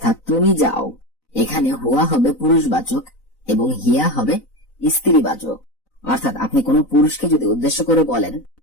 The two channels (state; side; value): late; right; 4.0 ms